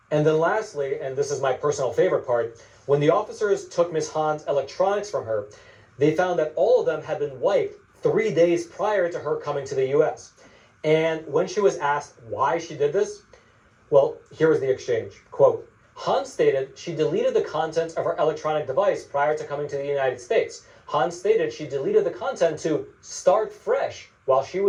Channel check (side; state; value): both; identical; correlation 1.00